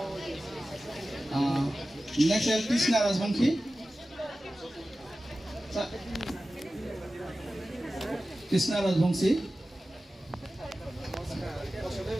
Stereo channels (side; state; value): both; normal; correlation 0.95